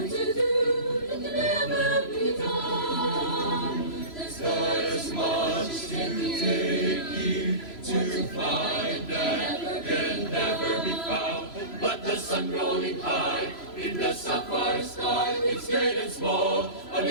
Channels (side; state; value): right; late; 3.0 ms